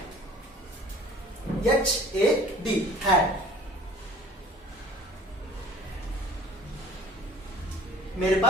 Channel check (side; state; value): both; normal; correlation 0.49